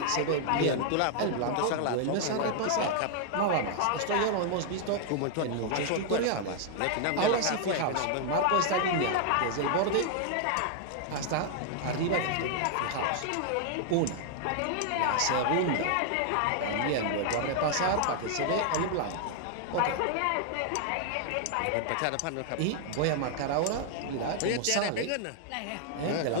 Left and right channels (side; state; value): both; different; correlation 0.00